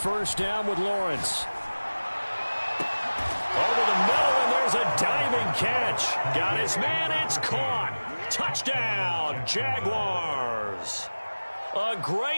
down with Lawrence. Over the middle, and there's a diving catch. Got his man, it's caught. Touchdown, Jaguars. A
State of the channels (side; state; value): both; inverted; correlation -1.00